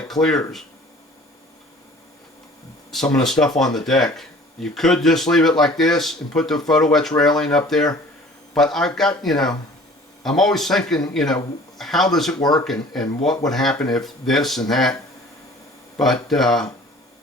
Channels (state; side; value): normal; both; correlation 0.49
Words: clears some of the stuff on the deck. You could just leave it like this and put the photo etch railing up there, but I've got, I'm always thinking, how does it work, and what would happen if this and that. But